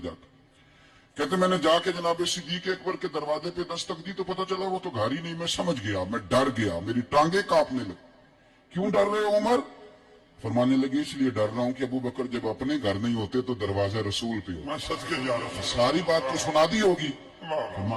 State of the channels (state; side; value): identical; both; correlation 1.00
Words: जाता। कहते मैंने जाके जनाबे सिद्दीक अकबर के दरवाजे पे दस्तक दी तो पता चला वो तो घर ही नहीं। मैं समझ गया, मैं डर गया, मेरी टांगे कांपने लगी। क्यों डर रहे हो उमर? फरमाने लगे इसलिए डर रहा हूं कि अबू बकर जब अपने घर नहीं होते तो दरवाजा रसूल पे हो। मैं सच के जा रहा हूं। सारी बात तो सुना दी होगी।